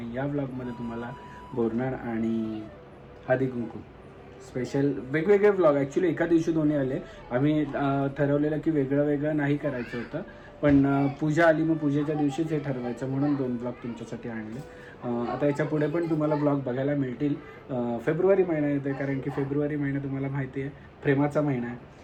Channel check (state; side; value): identical; both; correlation 1.00